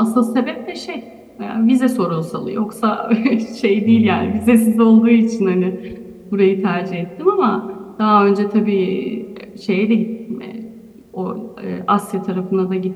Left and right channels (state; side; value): identical; both; correlation 1.00